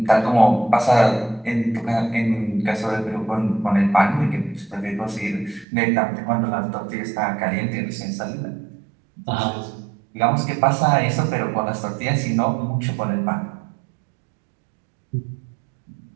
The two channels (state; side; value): drops out; left; at 5.7 s